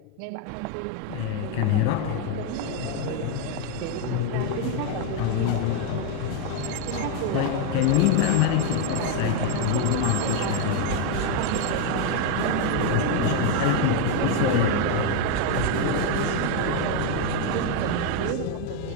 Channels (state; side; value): different; both; correlation 0.01